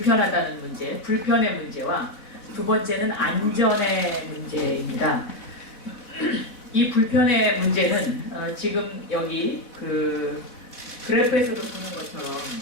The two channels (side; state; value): right; late; 4.1 ms